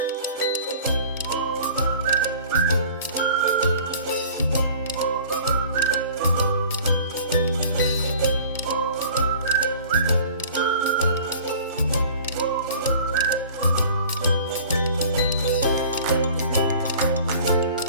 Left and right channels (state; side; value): inverted; both; correlation -0.46